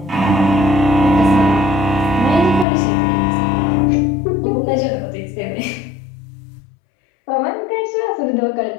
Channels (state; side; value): drops out; right; at 2.7 s